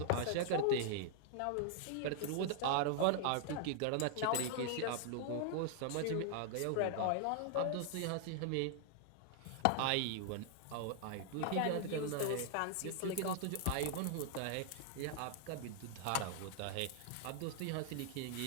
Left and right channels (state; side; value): different; both; correlation 0.00